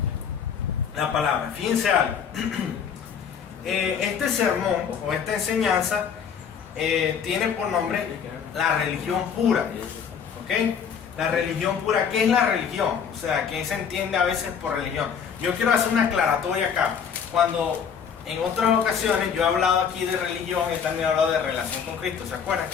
la palabra. Fíjense algo. Este sermón o esta enseñanza tiene por nombre la religión pura. ¿Ok? La religión pura. ¿Qué es la religión? O sea, ¿qué se entiende a veces por religión? Yo quiero hacer una aclaratoria acá. Cuando en otras ocasiones yo he hablado aquí de religión, he también hablado de relación con Cristo. ¿Se acuerdan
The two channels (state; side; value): quieter; right; 7.2 dB